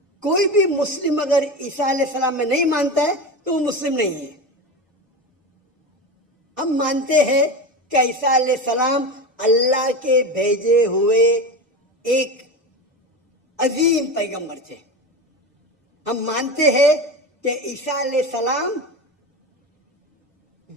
کوئی بھی مسلم اگر عیسیٰ علیہ السلام میں نہیں مانتا ہے تو وہ مسلم نہیں ہے. ہم مانتے ہیں کہ عیسیٰ علیہ السلام اللہ کے بھیجے ہوئے ایک عظیم پیغمبر تھے. ہم مانتے ہیں کہ عیسیٰ علیہ السلام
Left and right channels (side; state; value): both; normal; correlation 0.24